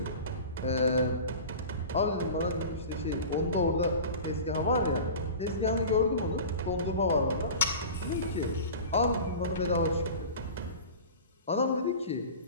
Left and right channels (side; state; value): both; inverted; correlation -0.35